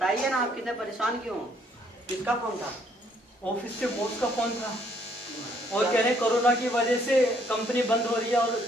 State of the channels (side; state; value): both; normal; correlation 0.67